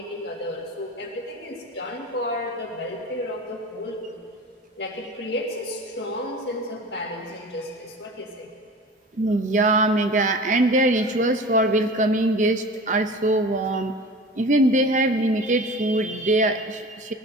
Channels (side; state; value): both; normal; correlation 0.37